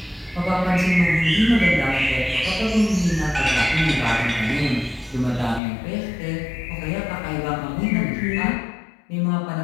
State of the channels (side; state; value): right; drops out; at 5.6 s